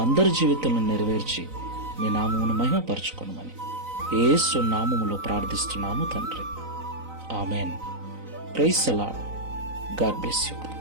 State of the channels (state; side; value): late; left; 3.9 ms